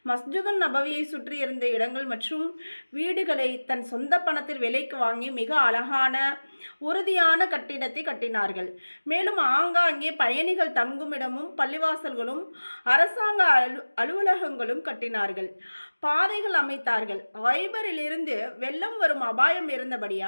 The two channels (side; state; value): both; inverted; correlation -1.00